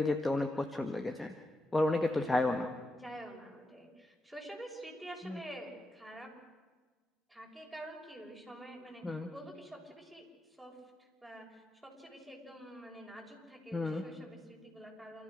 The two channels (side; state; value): both; normal; correlation 0.86